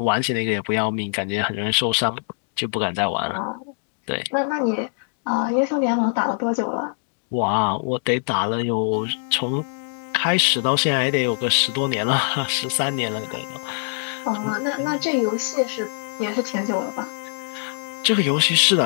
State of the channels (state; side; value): silent; right; digital silence